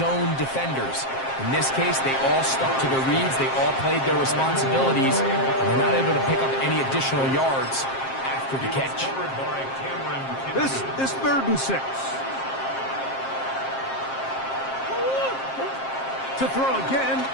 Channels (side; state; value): right; late; 7.5 ms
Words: defenders. In this case, they all stuck to their reads, they all played their responsibilities, and they're not able to pick up any additional yards after the catch. This is 3rd and 6. To throw again